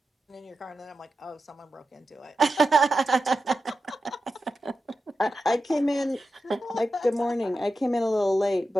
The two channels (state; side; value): normal; both; correlation 0.90